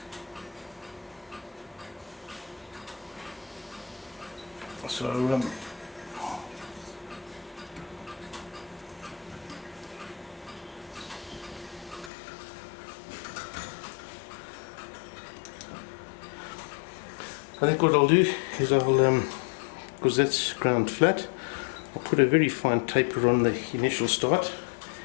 So I think what I'll do is I'll, because that's ground flat, I'll put a very fine taper on the initial start,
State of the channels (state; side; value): drops out; right; at 12.1 s